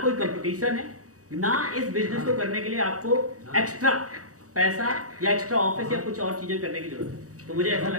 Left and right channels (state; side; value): late; left; 0.66 ms